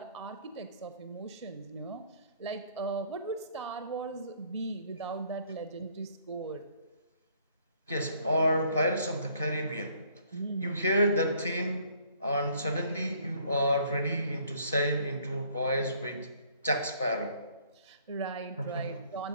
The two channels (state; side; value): inverted; both; correlation -0.62